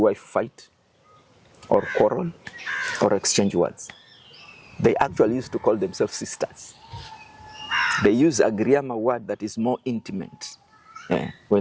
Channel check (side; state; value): both; identical; correlation 1.00